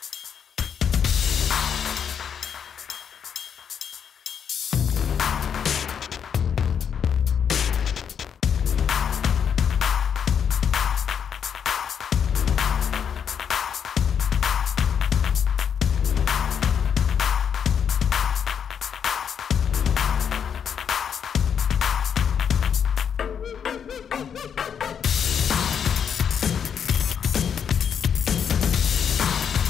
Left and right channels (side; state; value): right; quieter; 7.7 dB